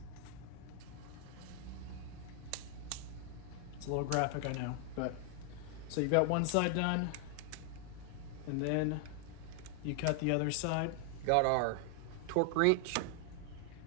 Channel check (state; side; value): different; both; correlation 0.00